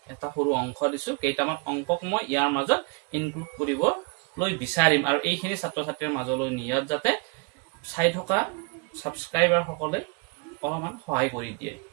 এটা সৰু অংশ দিছো, কেইটামান অংকক মই ইয়াৰ মাজত ইনক্লুড কৰিবলৈ বিচাৰিম আৰু এইখিনি ছাত্ৰ ছাত্ৰীৰ মাজলৈ নিয়াত যাতে চাই থকা ছাবস্ক্ৰাইবাৰ সকলে অলপমান সহায় কৰি দিয়ে।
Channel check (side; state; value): left; quieter; 32.0 dB